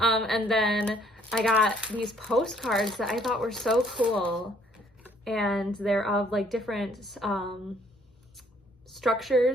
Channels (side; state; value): both; normal; correlation 0.63